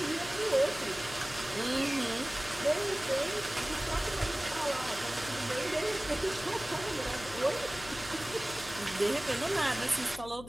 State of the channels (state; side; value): noise; left; hum, 15 dB below the sound